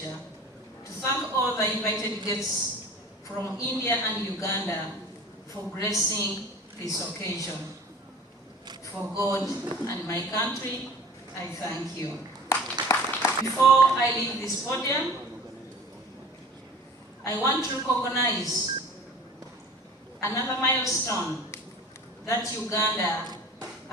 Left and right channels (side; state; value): both; normal; correlation 0.43